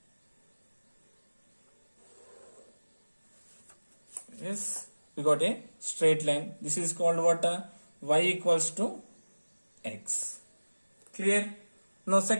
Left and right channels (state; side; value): inverted; both; correlation -1.00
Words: Yes, we got a straight line. This is called what? Y equals to x. Clear? Now